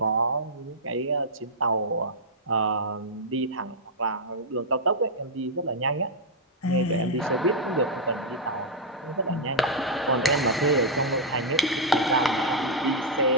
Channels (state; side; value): normal; both; correlation -0.05